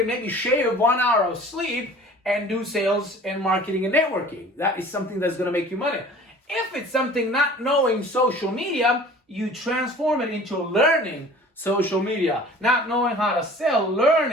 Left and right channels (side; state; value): both; normal; correlation 0.46